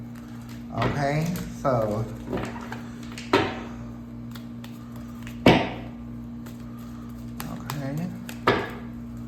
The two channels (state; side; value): identical; both; correlation 1.00